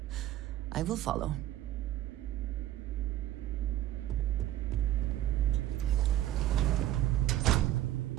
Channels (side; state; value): left; quieter; 13.3 dB